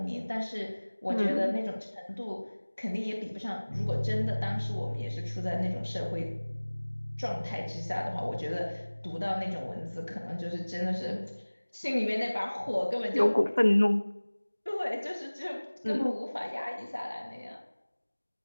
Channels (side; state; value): both; inverted; correlation -1.00